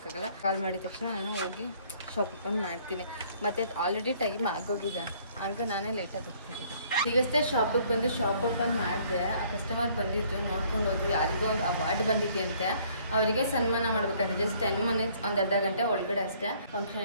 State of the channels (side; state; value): both; inverted; correlation -0.61